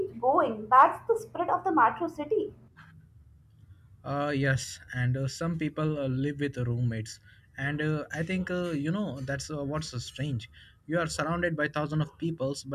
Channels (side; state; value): both; identical; correlation 1.00